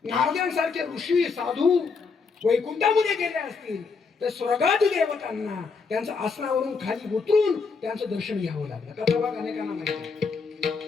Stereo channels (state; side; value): quieter; right; 4.9 dB